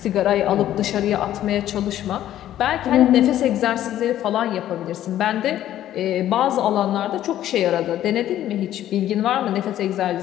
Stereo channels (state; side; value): quieter; right; 12.4 dB